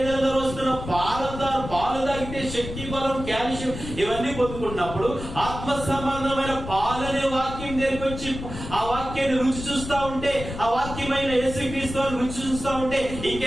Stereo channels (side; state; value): left; noise; rumble, 9 dB below the sound